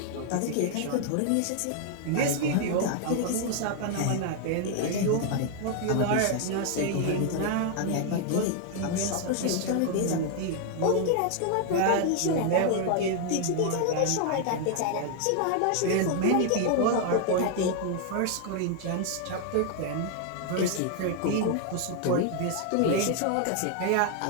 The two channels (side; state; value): both; different; correlation 0.00